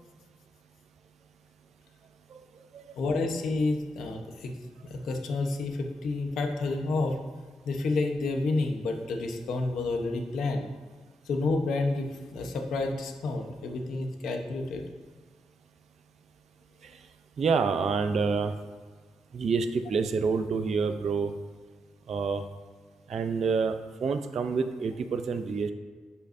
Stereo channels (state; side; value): normal; both; correlation 0.79